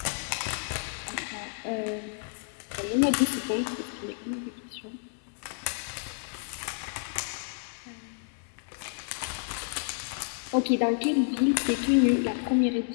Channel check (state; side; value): silent; right; digital silence